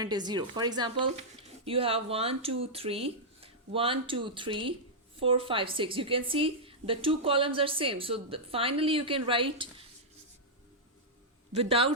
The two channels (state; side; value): normal; both; correlation -0.09